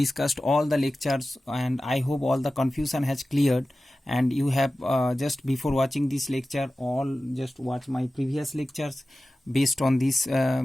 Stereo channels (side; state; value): both; normal; correlation 0.95